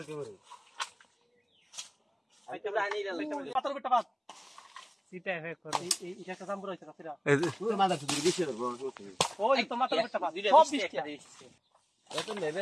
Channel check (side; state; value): both; identical; correlation 1.00